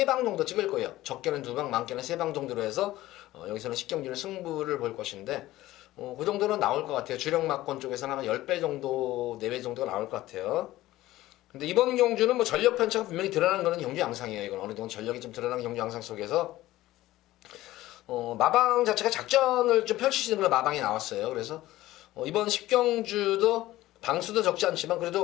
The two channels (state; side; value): quieter; right; 16.2 dB